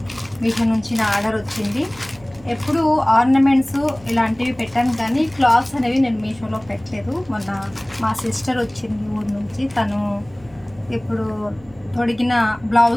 మీషో నుంచి నా ఆర్డర్ వచ్చింది. ఎప్పుడు ఆర్నమెంట్స్ ఇలాంటివి పెట్టాను, కానీ క్లాత్స్ అనేవి నేను మీషోలో పెట్టలేదు. మొన్న మా సిస్టర్ వచ్చింది ఊరు నుంచి. తను ఇప్పుడు తొడిగిన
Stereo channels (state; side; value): noise; right; hum, 25 dB below the sound